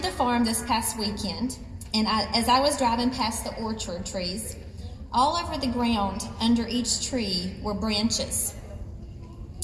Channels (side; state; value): both; identical; correlation 1.00